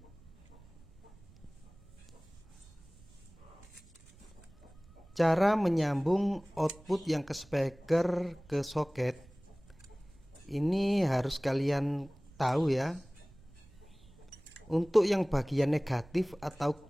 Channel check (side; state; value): right; noise; rumble, 24 dB below the sound